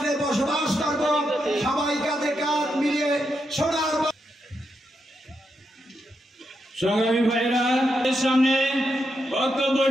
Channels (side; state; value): both; normal; correlation 0.83